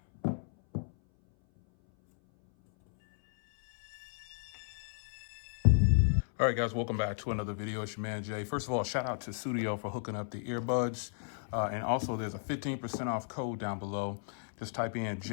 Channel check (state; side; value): silent; right; 55 dB below the other